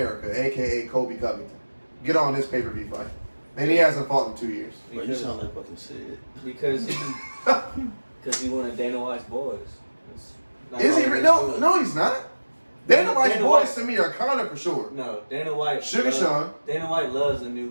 aka Colby Covington, get on this pay-per-view fight? And he hasn't fought in 2 years. Bro, you sound like fucking Sid. Because he one of Dana White's boys. Is he? No, he's not. Dana White's Dana boys White- to me are Conor for sure. No, Dana White. Sugar Sean. Dana White loves the new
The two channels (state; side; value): inverted; both; correlation -1.00